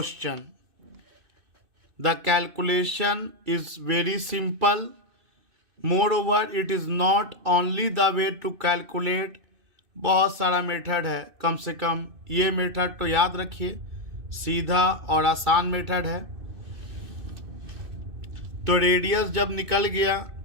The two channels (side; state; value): left; late; 2.6 ms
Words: The calculation is very simple. Moreover, it is not only the way to calculate. बहुत सारा method है, कम से कम ये मेथड तो याद रखिए, सीधा और आसान मेथड है। तो रेडियस जब निकल गया